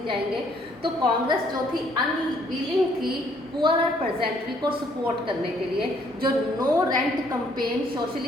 जाएंगे। तो कांग्रेस जो थी अनविलिंग थी पुअरर पेजेंट्री को सपोर्ट करने के लिए, जो नो रेंट कैंपेन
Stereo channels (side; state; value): both; normal; correlation 0.65